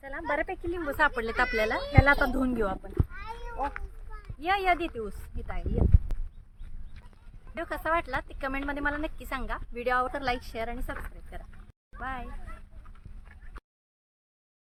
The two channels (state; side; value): identical; both; correlation 1.00